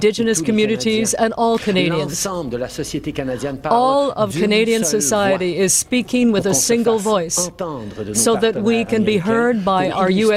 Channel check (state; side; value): identical; both; correlation 1.00